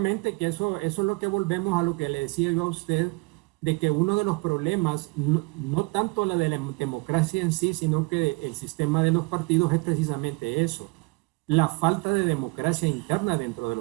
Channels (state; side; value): quieter; left; 26.8 dB